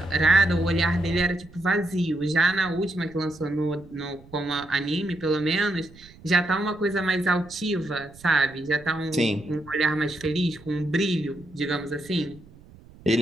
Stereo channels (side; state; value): right; noise; rumble, 23 dB below the sound